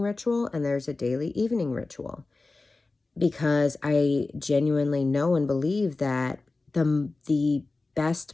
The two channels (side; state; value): right; quieter; 3.5 dB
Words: ritual and there's a daily evening ritual, because I genuinely know and believe that the